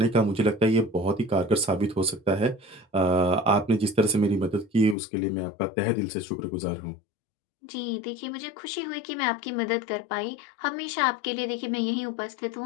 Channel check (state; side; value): drops out; right; at 5.0 s